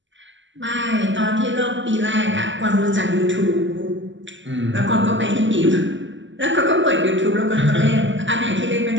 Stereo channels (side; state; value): left; late; 0.54 ms